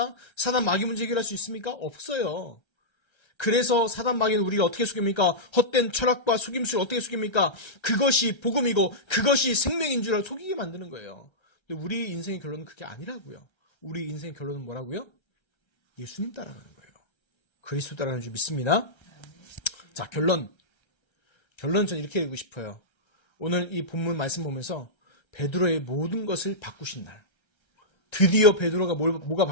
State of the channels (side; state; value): right; late; 1.3 ms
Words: 사단 마귀 문제 해결할 수 있습니까? 없어요. 그래서 사단 마귀는 우리가 어떻게 속입니까? 헛된 철학과 속임수를 어떻게 속입니까? 그것이 복음이고 그것이 생명인 줄 속이게 만드는 거예요. 근데 우리 인생의 결론은 그게 아니라고요. 우리 인생의 결론은 뭐라고요? 예수님 따라가는 거예요. 그리스도 따라가는 줄 믿습니다. 자, 결론 저는 이렇게 읽고 싶어요. 오늘 이 본문 말씀 보면서 베드로의 모든 것을 바꾸신 날. 드디어 베드로가 뭐가